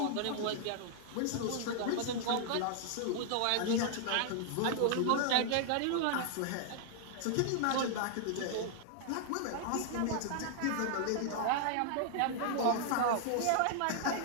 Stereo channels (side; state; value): both; different; correlation -0.01